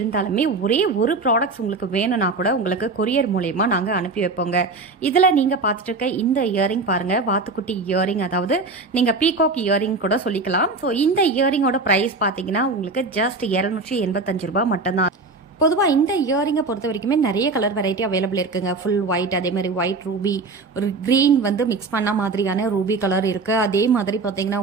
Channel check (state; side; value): quieter; left; 3.8 dB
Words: ஒரே ஒரு ப்ராடக்ட்ஸ் உங்களுக்கு வேணும்னா கூட உங்களுக்கு கொரியர் மூலயமா நாங்கள் அனுப்பி வைப்போங்க. இதில் நீங்கள் பார்த்துட்டு இருக்க இந்த இயரிங் பாருங்கள், வாத்துக்குட்டி இயரிங், அதாவது நீங்கள் பீகாக் இயரிங் கூட சொல்லிக்கலாம். ஸோ இந்த இயரிங்கோட ப்ரைஸ் பார்த்தீங்கன்னா உங்களுக்கு ஜஸ்ட் 285 ரூபாய் மட்டும்தான். பொதுவாக இந்த இயரிங்கை பொறுத்த வரைக்குமே நிறைய கலர் வெரைட்டி அவைலபிள் இருக்குங்க. ஃபுல் ஒயிட், அதே மாதிரி ஒயிட் ரூபி, ஒரு க்ரீன் வந்து மிக்ஸ் பண்ண மாதிரியான ரூபி கலர் இருக்குது. அதே மாதிரி பார்த்தீங்கன்னா